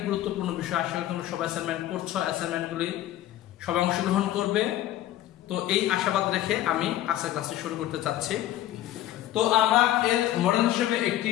গুরুত্বপূর্ণ বিষয়। আশা করি তোমরা সবাই অ্যাসাইনমেন্ট করছো, অ্যাসাইনমেন্টগুলি সবাই অংশগ্রহণ করবে। তো এই আশাবাদ রেখে আমি আজকের ক্লাসটি শুরু করতে চাচ্ছি। তো আমরা এর মডেল হিসেবে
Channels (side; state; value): right; quieter; 13.5 dB